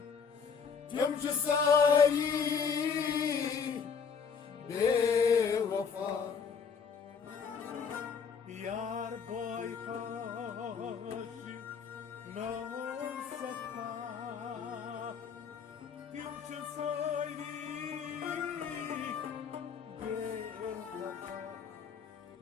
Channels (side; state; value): right; quieter; 6.2 dB